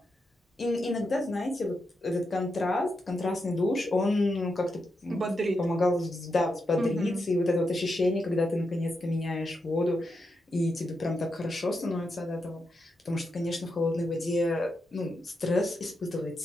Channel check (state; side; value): normal; both; correlation 0.85